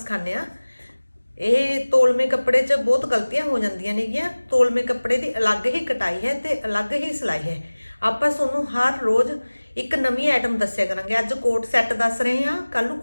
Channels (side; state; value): both; inverted; correlation -1.00